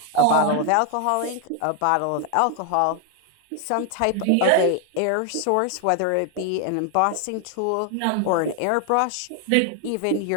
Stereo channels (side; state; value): both; different; correlation 0.00